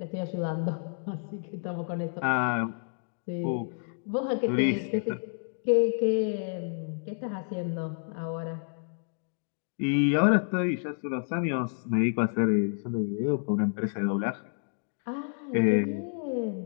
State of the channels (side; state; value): right; silent; digital silence